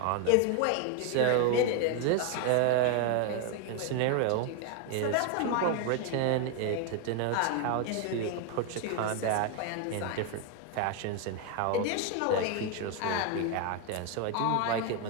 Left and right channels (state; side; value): different; both; correlation 0.01